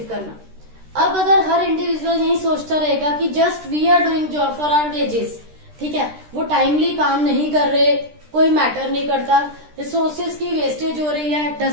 करना। अब अगर हर इंडिविजुअल यही सोचता रहेगा कि just we are doing job for our wages, ठीक है, वो टाइमली काम नहीं कर रहे, कोई मैटर नहीं करता, रिसोर्सेज की वेस्टेज हो रही है,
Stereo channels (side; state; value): left; late; 13 ms